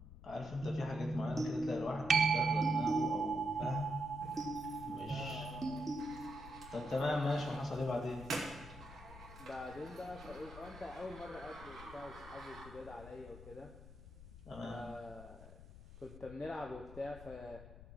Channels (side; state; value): left; noise; rumble, 15 dB below the sound